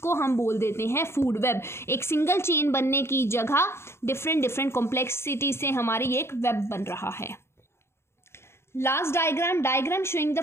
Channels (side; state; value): right; late; 0.12 ms